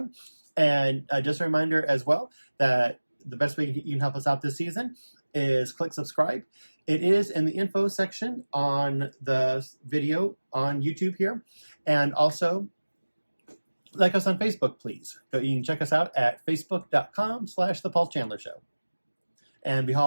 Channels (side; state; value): both; inverted; correlation -1.00